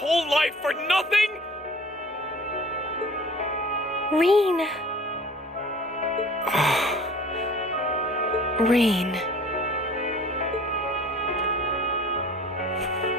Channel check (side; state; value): both; normal; correlation 0.47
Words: life for nothing? Rain. Rain.